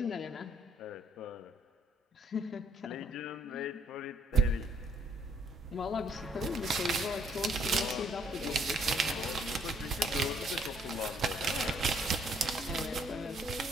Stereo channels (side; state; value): both; normal; correlation 0.64